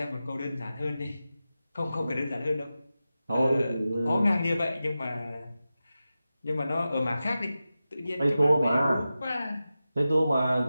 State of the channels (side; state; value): both; inverted; correlation -0.93